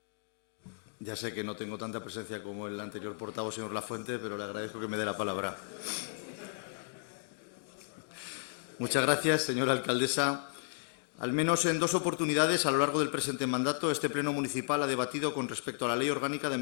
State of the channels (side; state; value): right; silent; digital silence